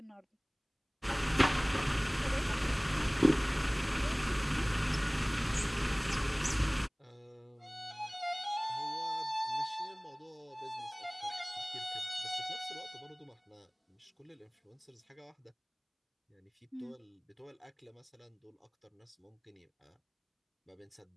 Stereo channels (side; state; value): both; identical; correlation 1.00